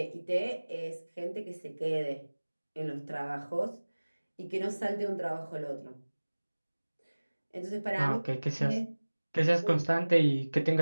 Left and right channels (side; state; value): both; inverted; correlation -1.00